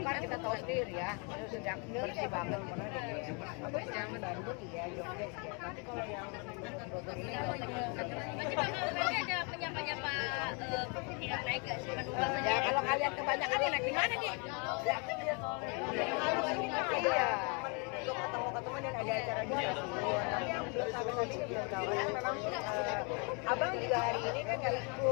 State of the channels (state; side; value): quieter; right; 34.2 dB